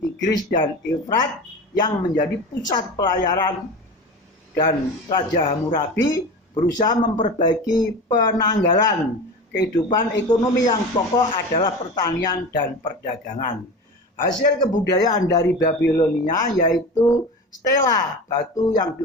Tigris dan Efrat yang menjadi pusat pelayaran, dan Raja Hammurabi berusaha memperbaiki penanggalan. Kehidupan ekonomi yang pokok adalah pertanian dan perdagangan. Hasil kebudayaan dari Babilonia yaitu stela, batu yang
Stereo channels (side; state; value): both; normal; correlation 0.30